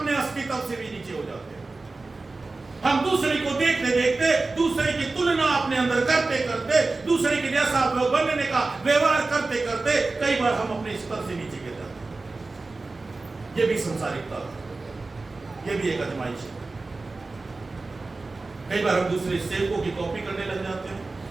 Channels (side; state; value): left; quieter; 3.5 dB